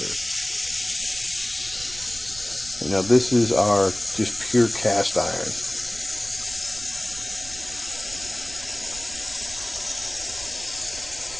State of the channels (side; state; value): right; noise; rumble, 16 dB below the sound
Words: And now this is our just pure cast iron.